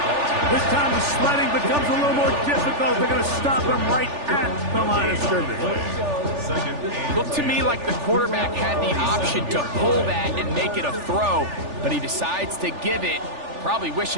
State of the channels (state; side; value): late; left; 3.4 ms